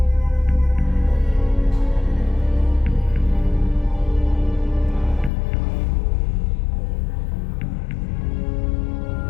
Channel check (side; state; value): right; drops out; at 5.3 s